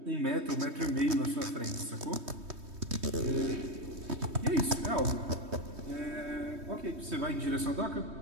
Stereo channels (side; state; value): left; late; 3.2 ms